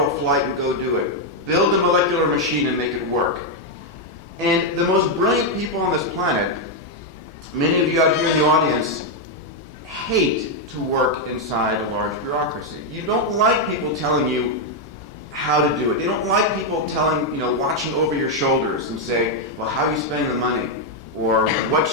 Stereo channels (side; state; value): both; normal; correlation 0.01